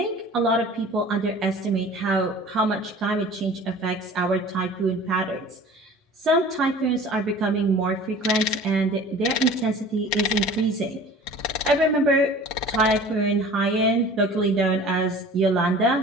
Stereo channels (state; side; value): normal; both; correlation 0.43